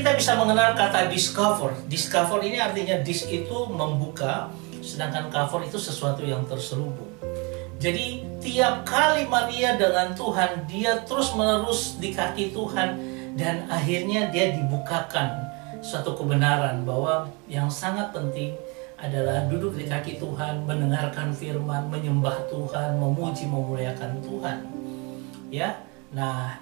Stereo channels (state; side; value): quieter; left; 30.0 dB